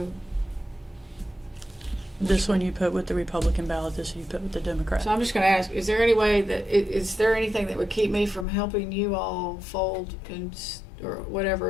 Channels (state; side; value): drops out; right; at 8.5 s